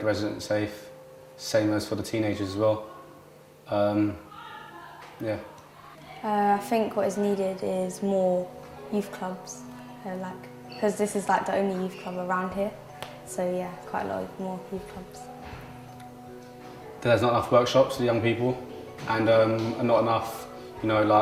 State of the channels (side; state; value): both; identical; correlation 1.00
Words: residents safe. Same as for the teenagers as well. I think what is needed is more youth clubs, because this is like the only youth club around here. So yeah, quite a lot more youth clubs. There's not enough workshops for the young people, and not enough,